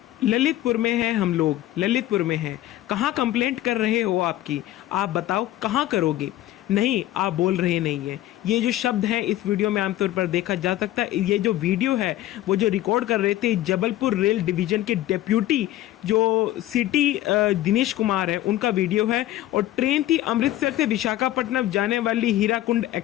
ललितपुर में हैं हम लोग, ललितपुर में हैं। कहाँ कंप्लेंट कर रहे हो आपकी? आप बताओ कहाँ करोगे? नहीं, आप बोल रहे नहीं हैं। ये जो शब्द हैं इस वीडियो में आमतौर पर देखा जा सकता है। ये जो वीडियो है वो जो रिकॉर्ड कर रहे थे जबलपुर रेल डिवीज़न के डेप्यूटी जो सिटी दिनेश कुमार है, उनका वीडियो है। और ट्रेन थी अमृतसर से विशाखापट्टनम जाने वाली हीराकुंड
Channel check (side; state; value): right; quieter; 14.5 dB